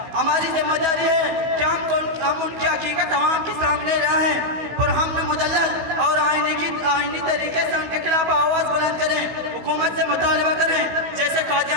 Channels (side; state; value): left; late; 15 ms